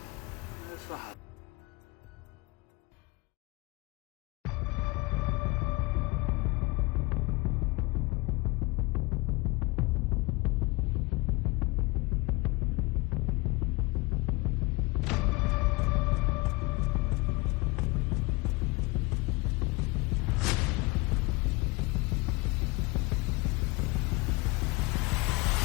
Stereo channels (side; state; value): right; quieter; 24.1 dB